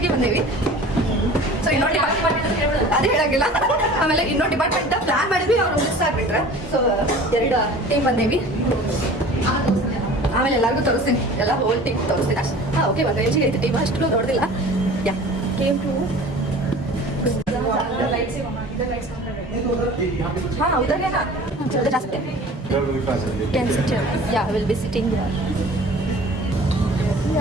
ಬಂದೀವಿ. ಸೊ ಇನ್ನೊಂದು ಡಿಪಾರ್ಟ್ಮೆಂಟ್ ಅದೇ ಹೇಳಂಗಿಲ್ಲ. ಆಮೇಲೆ ಇನ್ನೊಂದು ಡಿಪಾರ್ಟ್ಮೆಂಟ್ ಪ್ಲಾನ್ ಮಾಡಿದ್ವಿ, ಅವ್ರು ಮಿಸ್ ಆಗ್ಬಿಟ್ರೆ. ಸೊ 2 ಟೀಮ್ ಬಂದೀವಿ. ಆಮೇಲೆ ಎಲ್ಲರಿಗೂ ತೋರಿಸ್ತೀನಿ, ಎಲ್ಲ ಹೋಲ್ ಟೀಮ್ ತೋರಿಸ್ತೀನಿ ಅಷ್ಟೇ. ಹಾಂ ಓಕೆ, ಒಂದು ರೇಂಜಿಗೆ ಐತೆ ಟೀಮ್, ಅಷ್ಟು ನೋಡಿದಿಲ್ಲ. ಯಾ ಕೇಮ್ ಟು ಹಾಂ ಹೌದಾಗೇನಾ ಜಾಸ್ತಿ can sit yeah will be sitting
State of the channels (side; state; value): both; normal; correlation 0.43